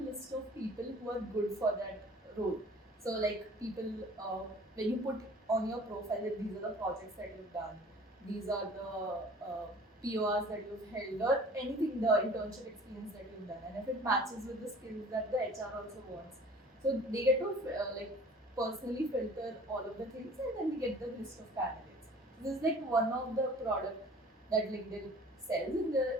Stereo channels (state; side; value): normal; both; correlation 0.48